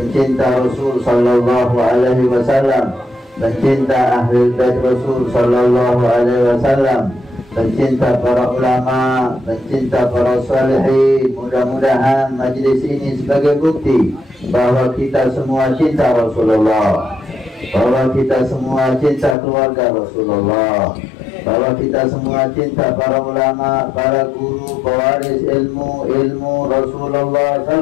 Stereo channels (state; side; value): drops out; right; at 19.4 s